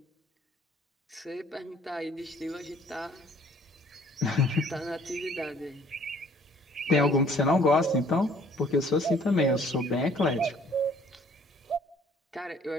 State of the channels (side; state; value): both; normal; correlation 0.58